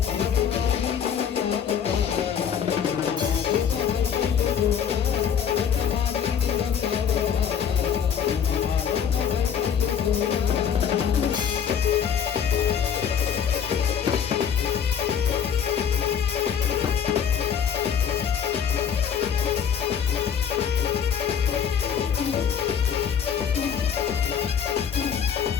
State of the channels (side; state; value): right; quieter; 8.0 dB